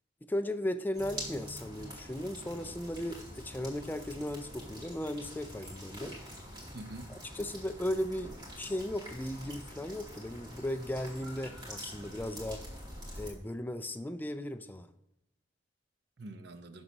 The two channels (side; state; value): both; normal; correlation 0.79